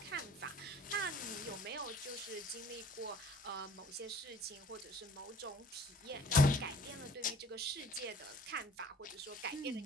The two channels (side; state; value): both; normal; correlation 0.52